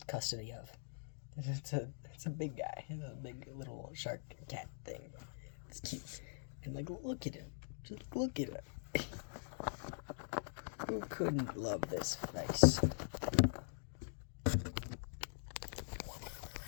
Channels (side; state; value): right; silent; digital silence